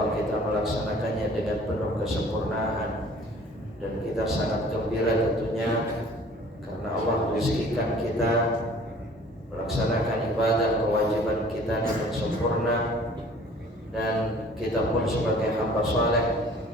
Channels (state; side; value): normal; both; correlation 0.51